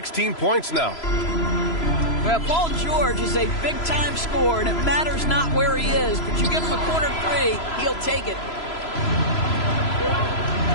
points now. Well, Paul George is a big-time scorer, and it matters not where he is, but you give him a corner three, he'll take it.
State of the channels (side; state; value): right; late; 3.0 ms